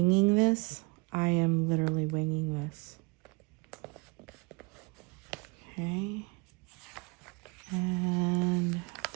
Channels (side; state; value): left; quieter; 28.9 dB